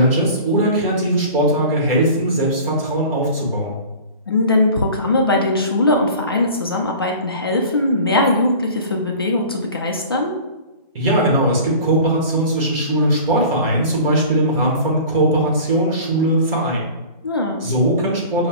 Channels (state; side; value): inverted; both; correlation -0.41